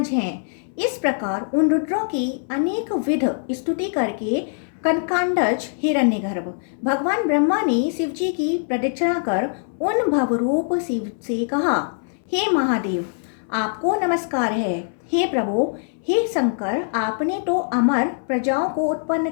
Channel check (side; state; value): right; silent; 64 dB below the other